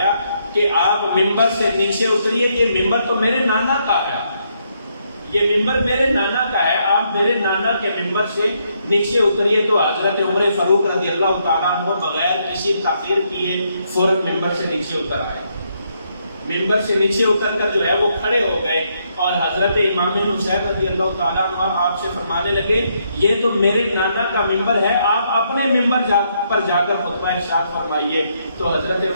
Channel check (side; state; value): both; inverted; correlation -0.75